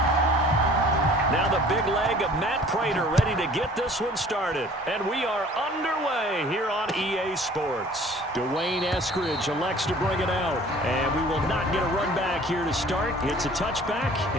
Now the big leg of Matt Prater ready to get this one started. And we are underway here on EA Sports. Dwayne Eskridge elects to bring it out. And we will not get a run back here to start. It's a touchback,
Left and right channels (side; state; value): both; normal; correlation 0.50